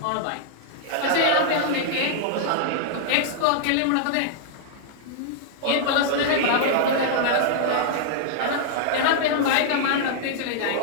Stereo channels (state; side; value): different; both; correlation -0.01